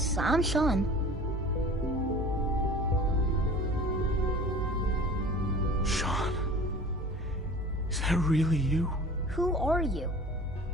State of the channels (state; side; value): normal; both; correlation 0.42